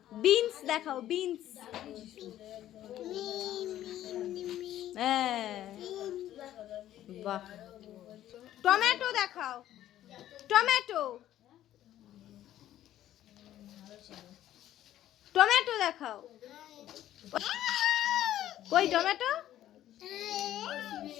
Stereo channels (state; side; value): quieter; right; 12.7 dB